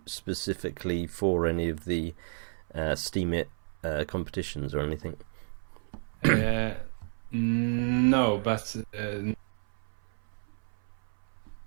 specifically for any of the Steemit competitions or anything? No, but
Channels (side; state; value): left; silent; 57 dB below the other